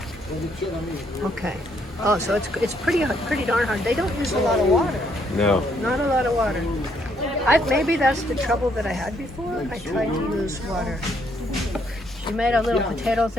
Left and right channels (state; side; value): normal; both; correlation 0.71